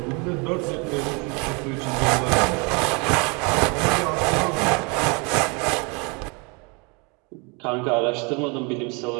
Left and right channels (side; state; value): left; quieter; 30.9 dB